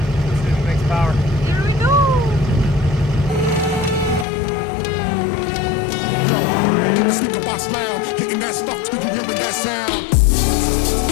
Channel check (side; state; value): right; drops out; at 4.2 s